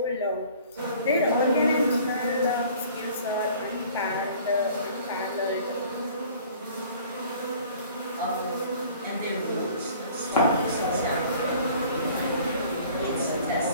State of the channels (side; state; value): both; inverted; correlation -0.50